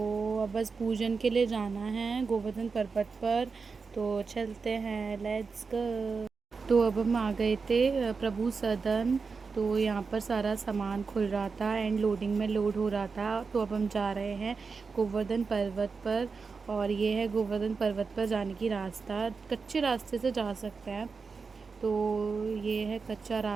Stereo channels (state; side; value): quieter; left; 4.9 dB